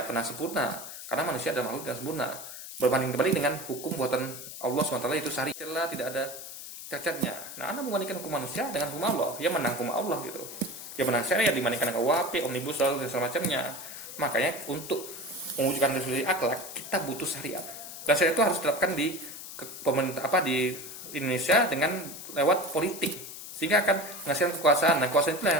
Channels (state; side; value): noise; left; hiss, 11 dB below the sound